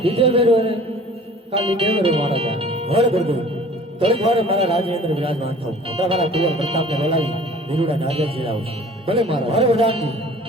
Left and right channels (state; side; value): normal; both; correlation 0.47